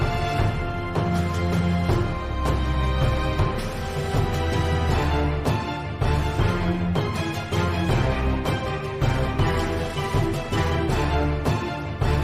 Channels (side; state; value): both; identical; correlation 1.00